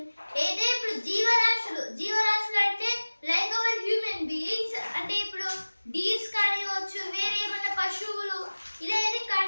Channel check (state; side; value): inverted; both; correlation -1.00